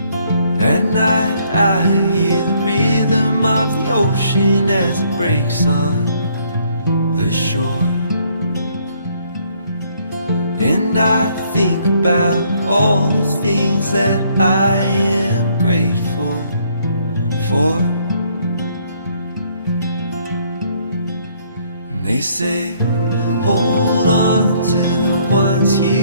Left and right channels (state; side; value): inverted; both; correlation -0.66